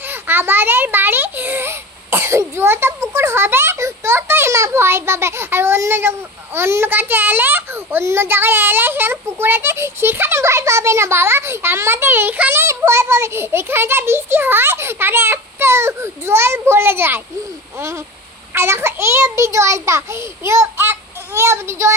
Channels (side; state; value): both; normal; correlation 0.30